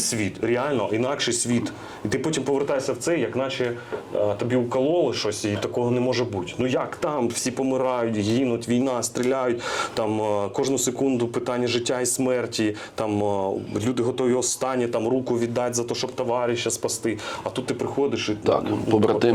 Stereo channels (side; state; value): both; identical; correlation 1.00